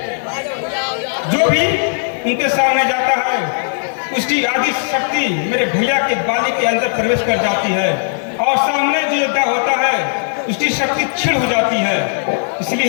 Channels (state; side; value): silent; right; digital silence